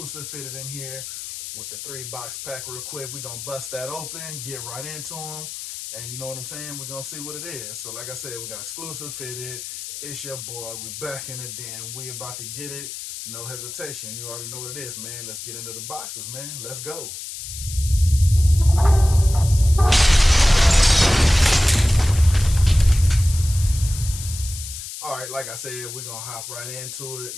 fitted in here with the 3-box pack real quick. We're going to bust that open, get right into them. And you know what I'm saying? We're going to see what it is. So like I said, we got exclusive fitted. It's your boy. We back in the den. We about to get it. No hesitation. You already know what it is, man. Let's get into the boxes, man. Let's go. All right, like I said, we're going to hop right into it.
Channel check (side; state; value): left; noise; hiss, 9 dB below the sound